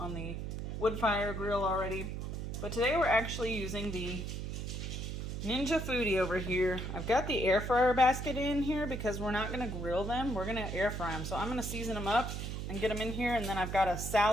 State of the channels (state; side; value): noise; right; hum, 5 dB below the sound